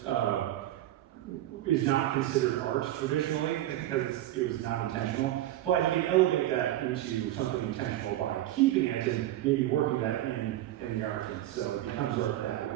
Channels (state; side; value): quieter; left; 14.1 dB